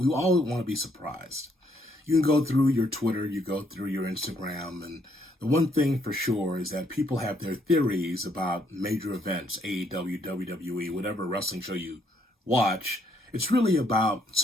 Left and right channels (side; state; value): both; normal; correlation 0.71